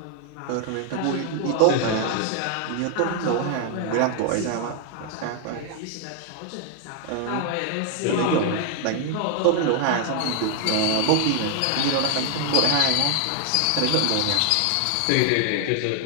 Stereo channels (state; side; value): different; both; correlation 0.00